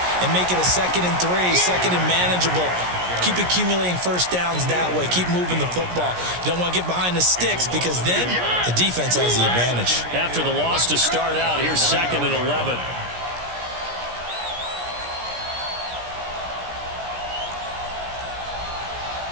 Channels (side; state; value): left; late; 17 ms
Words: and make it a 2nd and 3, 2nd and manageable. Keep accumulating first downs that way. Keep moving the football. You don't want to get behind the sticks because then the defense has the advantage. After the loss to start out, here's 2nd and 11.